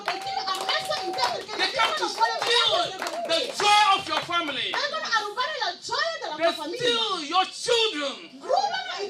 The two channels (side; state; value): both; identical; correlation 1.00